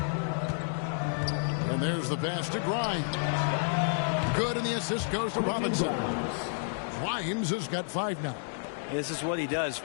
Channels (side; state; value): right; silent; digital silence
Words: And there's the pass to Grimes. Good, and the assist goes to Robinson. Grimes has got 5 now. This is what he does.